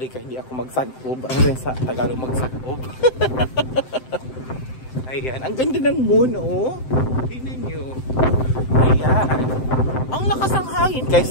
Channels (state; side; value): late; right; 7.8 ms